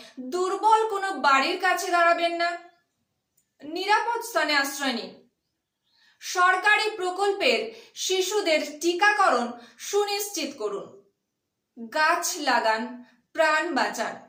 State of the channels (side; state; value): both; identical; correlation 1.00